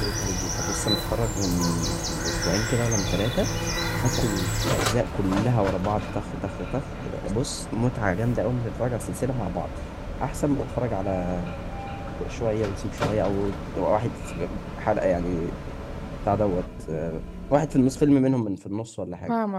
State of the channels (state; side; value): identical; both; correlation 1.00